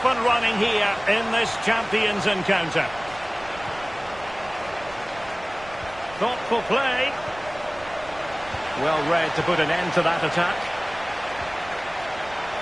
and running here in this Champions encounter. Thoughtful play. Well read to put an end to that attack.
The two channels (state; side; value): noise; right; rumble, 20 dB below the sound